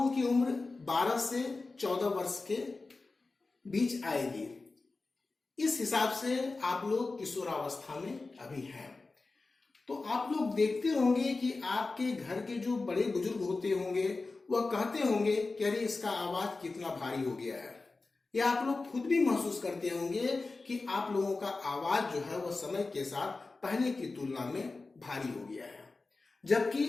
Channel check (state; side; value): quieter; right; 3.6 dB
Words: की उम्र 12 से 14 वर्ष के बीच आएगी। इस हिसाब से आप लोग किशोरावस्था में अभी हैं। तो आप लोग देखते होंगे कि आपके घर के जो बड़े बुजुर्ग होते होंगे वह कहते होंगे कि अरे इसका आवाज कितना भारी हो गया है। या आप लोग खुद भी महसूस करते होंगे कि आप लोगों का आवाज जो है वह समय के साथ पहले की तुलना में भारी हो गया है। जबकि